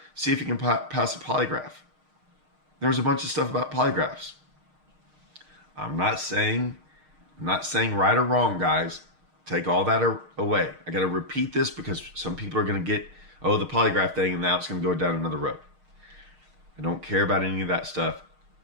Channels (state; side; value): late; left; 6.5 ms